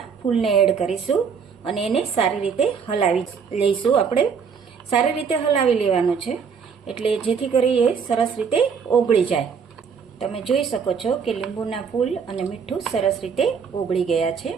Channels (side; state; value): left; quieter; 6.3 dB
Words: ફૂલને એડ કરીશું અને એને સારી રીતે હલાવી લઈશું. આપણે સારી રીતે હલાવી લેવાનું છે એટલે જેથી કરી એ સરસ રીતે ઓગળી જાય. તમે જોઈ શકો છો કે લીંબુના ફૂલ અને મીઠું સરસ રીતે ઓગળી ગયા છે.